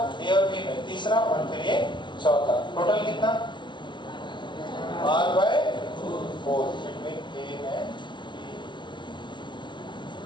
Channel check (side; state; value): right; late; 0.22 ms